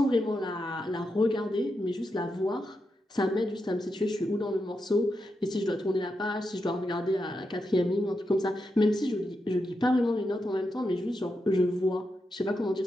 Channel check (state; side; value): normal; both; correlation 0.86